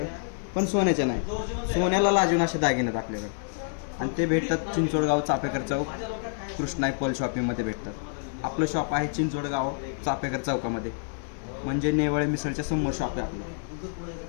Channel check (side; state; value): right; silent; 60 dB below the other